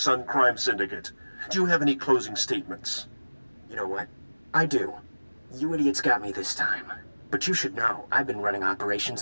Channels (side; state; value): both; inverted; correlation -1.00